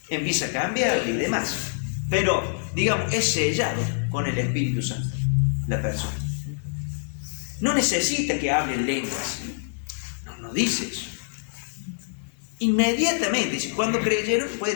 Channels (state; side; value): silent; right; 56 dB below the other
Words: Empieza a cambiar y demás. Pero, digamos, es sellado con el Espíritu Santo la persona. No necesita que hablen lenguas. No dice eso. Inmediatamente dice, cuando creyeron,